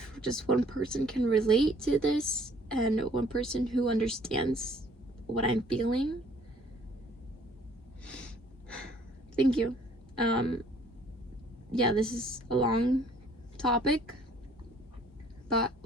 just one person can relate to this, and one person who understands what I'm feeling, thank you. Yeah, this is a long topic, but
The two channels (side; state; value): both; normal; correlation 0.59